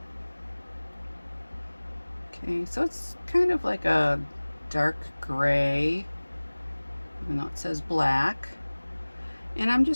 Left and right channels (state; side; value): inverted; both; correlation -1.00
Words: Okay, so it's kind of like a dark gray, even though it says black. And I'm